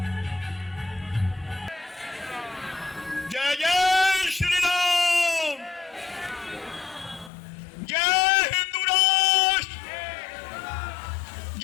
जय जय श्री राम, जय हिंदू राष्ट्र,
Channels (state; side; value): drops out; right; at 7.3 s